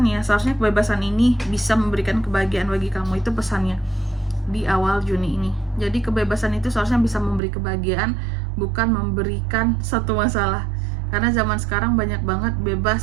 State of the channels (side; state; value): left; drops out; at 7.4 s